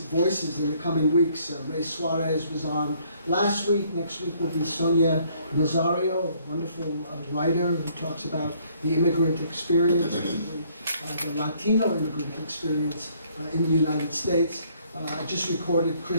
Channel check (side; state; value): both; inverted; correlation -0.64